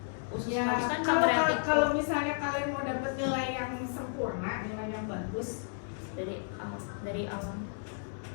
usus Ya, halus kan kalau misalnya kalian mau dapat nilai yang sempurna, nilai yang bagus, dari awal.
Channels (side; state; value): right; silent; digital silence